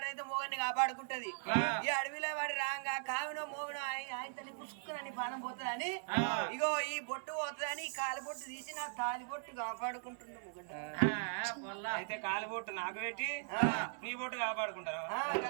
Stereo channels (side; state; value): left; silent; 52 dB below the other